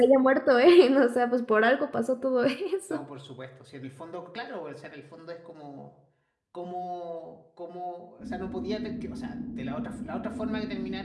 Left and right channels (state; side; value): identical; both; correlation 1.00